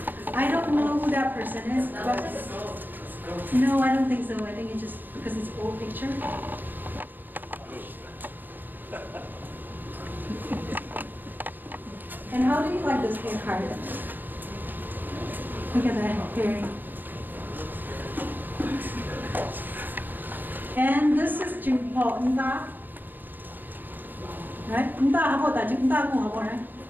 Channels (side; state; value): left; late; 0.091 ms